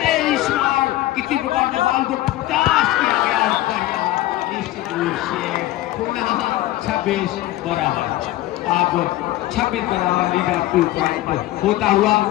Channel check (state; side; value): quieter; right; 16.0 dB